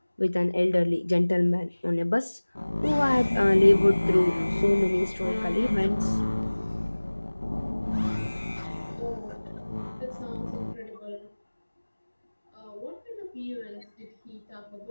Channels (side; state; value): both; inverted; correlation -1.00